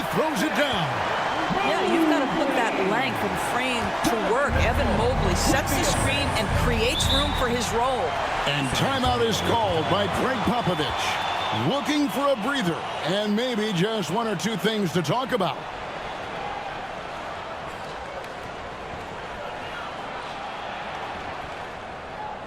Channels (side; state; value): both; identical; correlation 1.00